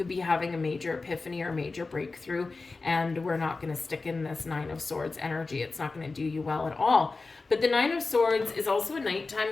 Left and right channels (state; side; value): quieter; right; 3.8 dB